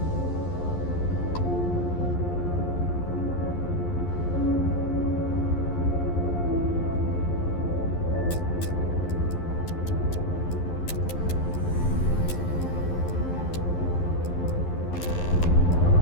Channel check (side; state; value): right; late; 11 ms